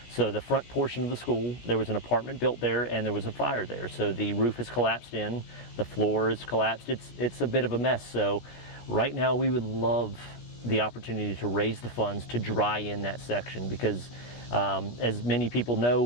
So the front portion of the school, there was an apartment built there and there was a fire there. So the roof has collapsed in, the floor is collapsed. It's a bit of a mess. So right now we would love the opportunity to raise the funds to dry in that section, because as many people know,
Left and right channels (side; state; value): right; late; 17 ms